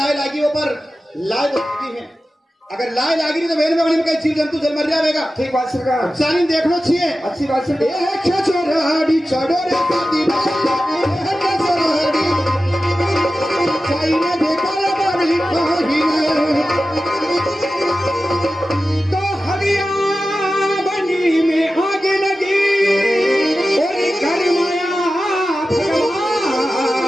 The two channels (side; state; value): both; normal; correlation 0.94